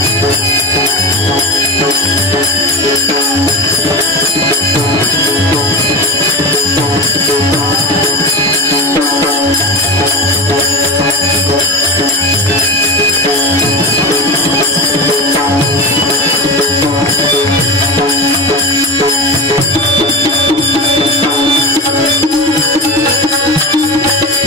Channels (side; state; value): both; normal; correlation 0.25